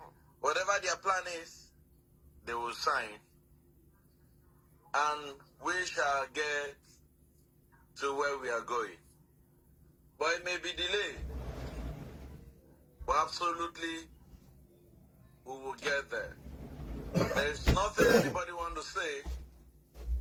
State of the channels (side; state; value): both; identical; correlation 1.00